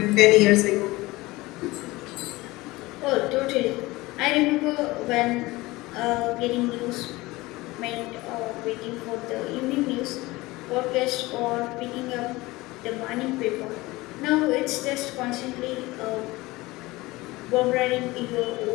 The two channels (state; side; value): quieter; right; 20.6 dB